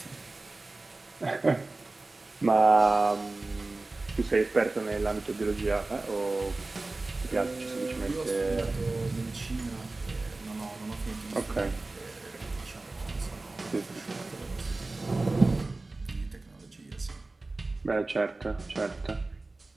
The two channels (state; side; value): quieter; left; 3.2 dB